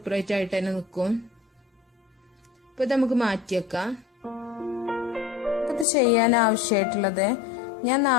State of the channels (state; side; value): drops out; right; at 5.9 s